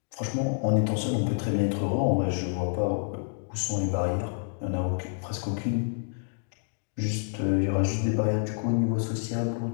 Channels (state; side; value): silent; right; digital silence